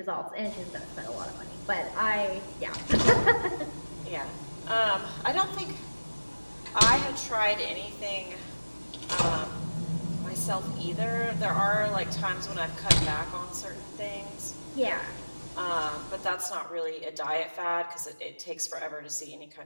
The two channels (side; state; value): both; inverted; correlation -1.00